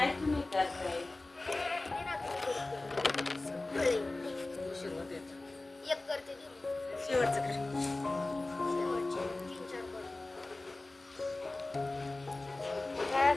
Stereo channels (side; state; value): right; quieter; 3.0 dB